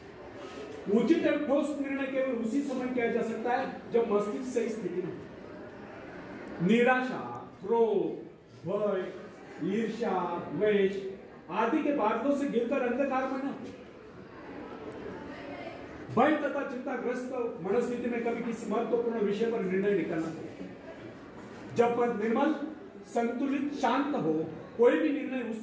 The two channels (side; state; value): both; identical; correlation 1.00